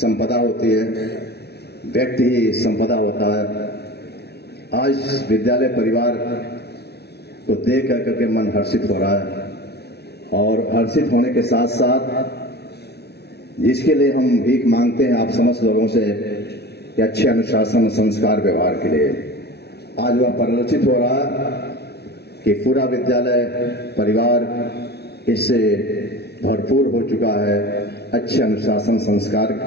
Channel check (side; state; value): right; late; 0.48 ms